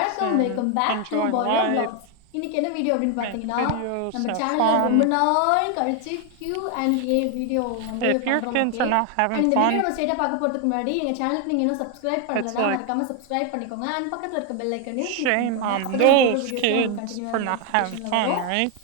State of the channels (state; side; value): different; both; correlation 0.01